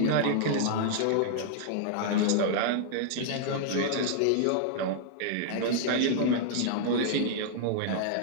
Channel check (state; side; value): different; both; correlation -0.01